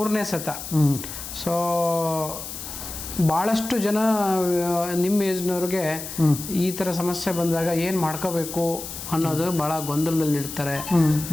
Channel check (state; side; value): noise; left; hiss, 9 dB below the sound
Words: ಸತ. ಸೊ ಭಾಳಷ್ಟು ಜನ ನಿಮ್ಮ ಏಜ್ನವ್ರಿಗೆ ಈ ಥರ ಸಮಸ್ಯೆ ಬಂದಾಗ ಏನು ಮಾಡ್ಕೋಬೇಕು ಅನ್ನೋದು ಭಾಳ ಗೊಂದಲದಲ್ಲಿರ್ತಾರೆ,